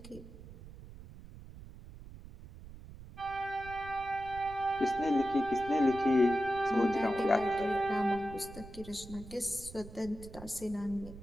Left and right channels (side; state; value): right; noise; rumble, 16 dB below the sound